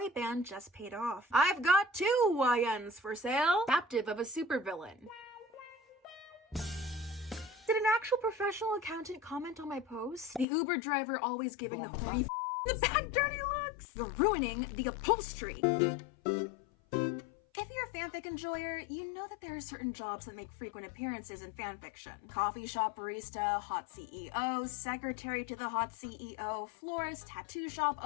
band just paid off. I've got 2 YNs for sale. Captive of a supervillain. Did an actual professional accountant comment on my post? The Uber driver always giving the horny the bad dirty looks. You're ruining the upholstery. If you're a fanfic enjoyer, you know that there are certain jobs that make frequent appearances in fanfiction. Coffee shop barista, hot CEO, secretary to the hot CEO, florist, tattoo shop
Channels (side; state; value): right; drops out; at 10.5 s